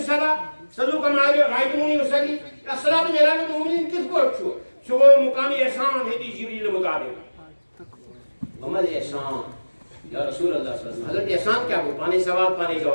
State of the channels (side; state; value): both; inverted; correlation -1.00